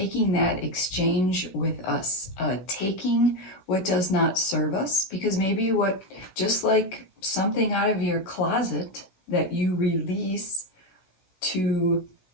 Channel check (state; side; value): late; right; 16 ms